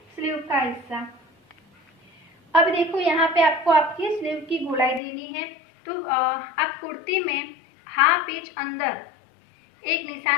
स्लीव का हिस्सा। अब देखो यहाँ पे आपको आपकी स्लीव की गोलाई देनी है। तो आप कुर्ती में हाफ इंच अंदर एक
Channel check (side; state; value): right; drops out; at 5.0 s